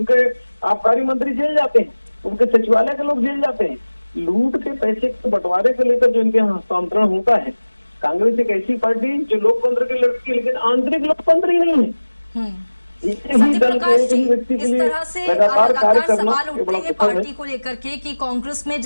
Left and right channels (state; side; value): inverted; both; correlation -1.00